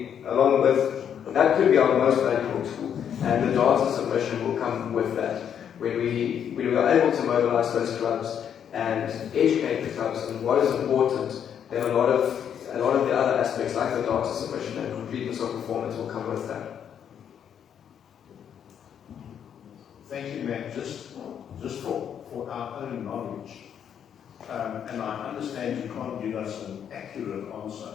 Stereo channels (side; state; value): right; quieter; 8.7 dB